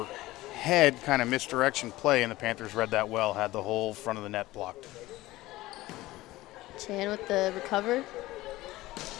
head, kind of misdirection play, and the Panthers read that well, had the whole front of the net blocked. Chan with the recover.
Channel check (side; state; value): right; quieter; 17.8 dB